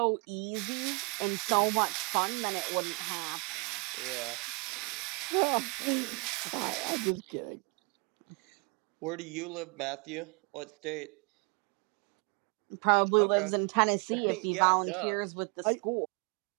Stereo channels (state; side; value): quieter; left; 33.5 dB